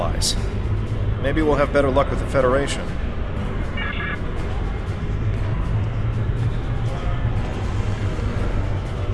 Maybe we'll have better luck with the Federation.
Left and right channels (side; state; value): both; identical; correlation 1.00